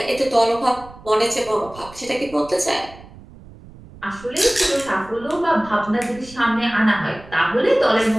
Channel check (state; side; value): noise; right; rumble, 20 dB below the sound